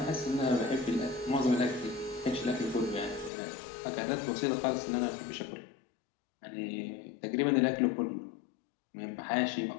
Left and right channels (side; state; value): right; drops out; at 3.3 s